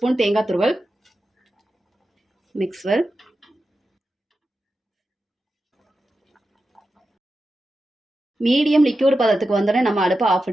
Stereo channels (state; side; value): normal; both; correlation 0.91